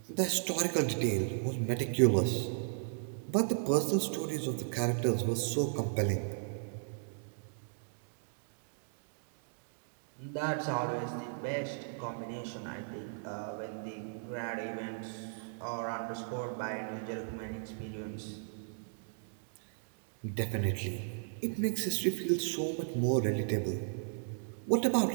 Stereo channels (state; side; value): silent; left; digital silence